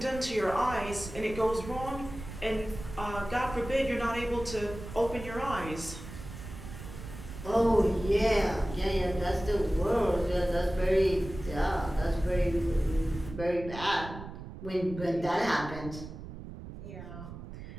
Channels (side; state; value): right; noise; rumble, 11 dB below the sound